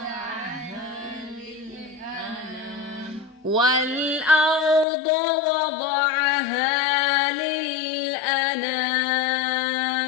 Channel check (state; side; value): drops out; right; at 4.9 s